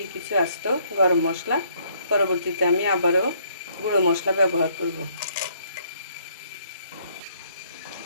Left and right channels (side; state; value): both; inverted; correlation -0.66